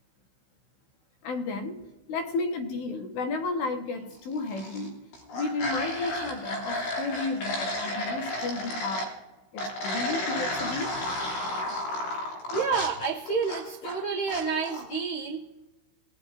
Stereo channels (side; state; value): right; late; 16 ms